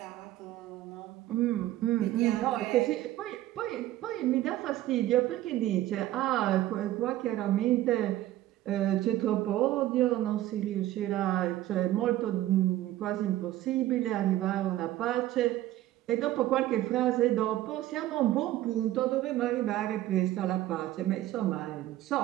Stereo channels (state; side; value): quieter; left; 14.5 dB